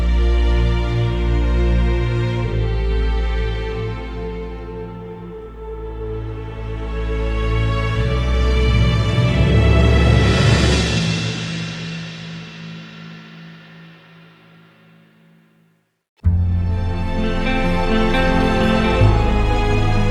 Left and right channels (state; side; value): identical; both; correlation 1.00